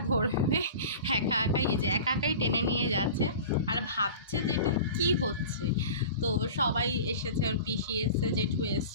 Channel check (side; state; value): both; inverted; correlation -0.37